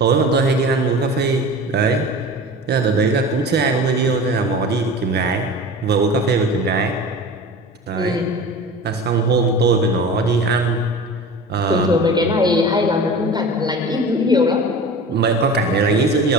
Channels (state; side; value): normal; both; correlation 0.36